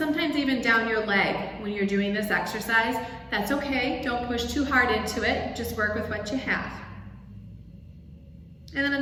even down your leg when you're doing this exercise. That's okay. Don't push too hard into it. Just work with what you have. And then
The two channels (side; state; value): both; identical; correlation 1.00